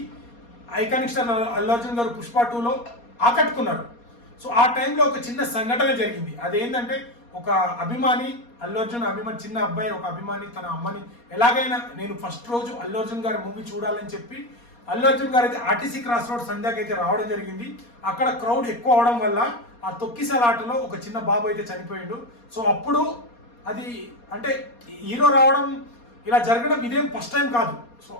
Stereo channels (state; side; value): late; right; 4.2 ms